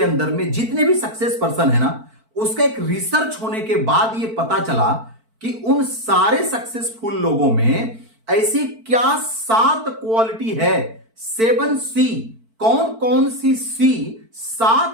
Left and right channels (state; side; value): late; left; 4.5 ms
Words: अंदर में जितने भी सक्सेस पर्सन है ना, उसका एक रिसर्च होने के बाद ये पता चला कि उन सारे सक्सेसफुल लोगों में ऐसी क्या 7 क्वालिटी है। 7C कौन कौन सी